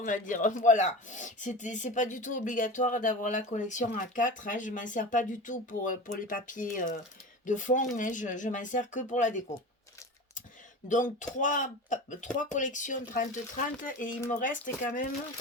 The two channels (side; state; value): both; normal; correlation 0.30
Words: va dire. Voilà. C'est pas du tout obligatoire d'avoir la collection A4, hein. Je m'en sers pas du tout pour les papiers de fond, mais je m'en sers que pour la déco. Donc trois collections 30-30 et il me reste quand même